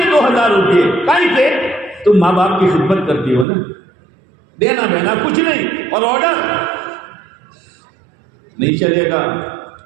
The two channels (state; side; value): drops out; left; at 3.5 s